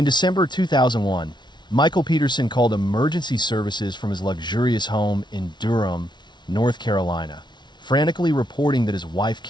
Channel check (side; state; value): right; late; 0.21 ms